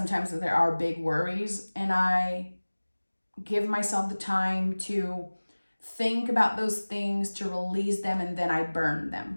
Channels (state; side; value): inverted; both; correlation -1.00